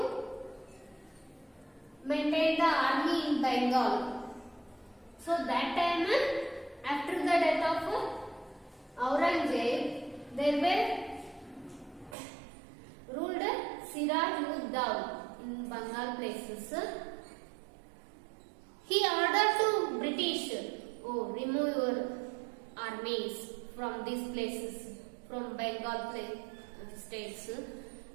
maintain the army in Bengal, so that time, after the death of Aurangzeb, there were ruled Siraj-ud-Dawla in Bengal places. He ordered to British, remove your armies from these places, from Bengal states.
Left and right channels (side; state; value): left; drops out; at 12.2 s